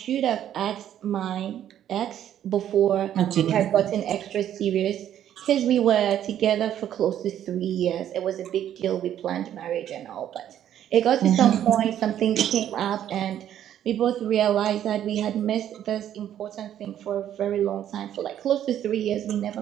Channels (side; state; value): left; quieter; 10.8 dB